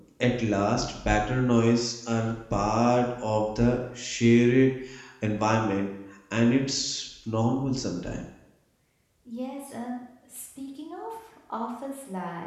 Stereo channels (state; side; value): identical; both; correlation 1.00